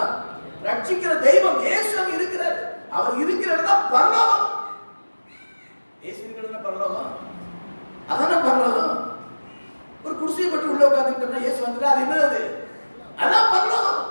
ரட்சிக்கிற தெய்வம் இயேசு அங்க இருக்கிறாரு. அவர் இருக்கிற இடம் பரலோகம். இயேசு இருக்கிற இடம் பரலோகம். அதான பரலோகம். ஒரு குடிசையை பற்றி உள்ள உட்கார்ந்துட்டோம்னா இயேசு வந்துட்டா அது என்னது? அதான் பரலோகம்.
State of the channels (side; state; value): both; inverted; correlation -1.00